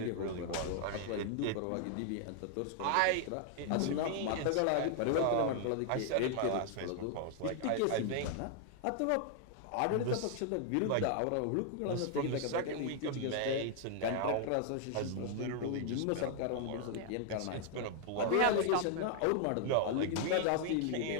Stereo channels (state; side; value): different; both; correlation 0.00